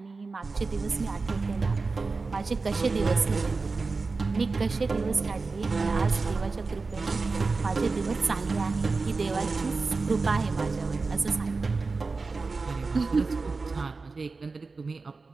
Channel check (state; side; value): quieter; left; 4.0 dB